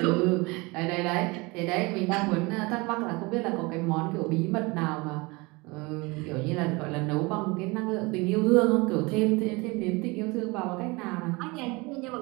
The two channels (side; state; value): left; quieter; 25.3 dB